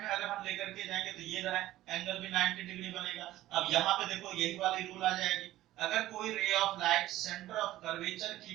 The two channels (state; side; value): quieter; left; 15.1 dB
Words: में अगर हम लेकर के जाएंगे तो ये रहा एंगल भी 90 डिग्री बनेगा। अब यहाँ पे देखो यही वाली रूल आ जाएगी, अगर कोई ray of light centre of curvature की